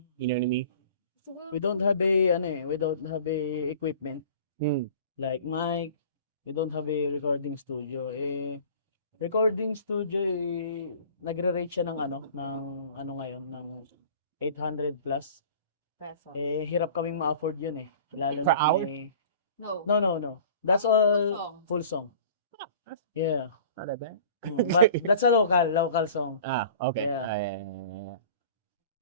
You know what I mean? We don't have a ano eh, we don't have a equipment Hmm. like mic. We don't have a recording studio. Recording studio nagre-rate siya ng ano ngayon ng 800 plus. peso. Eh, hirap kaming ma-afford yun eh. Lalo Per na hour? may... No. No. That's Full all song. full song. Yeah. Not that bad. But that's a local song. Okay. Yeah.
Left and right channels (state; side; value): inverted; both; correlation -0.44